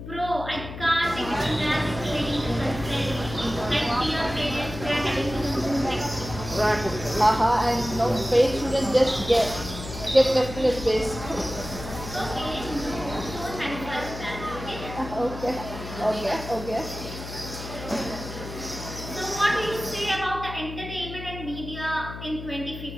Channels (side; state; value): left; noise; hum, 10 dB below the sound